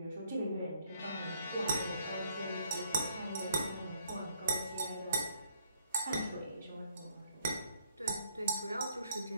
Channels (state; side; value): inverted; both; correlation -0.66